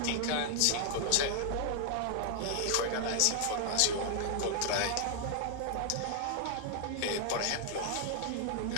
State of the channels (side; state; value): both; different; correlation 0.00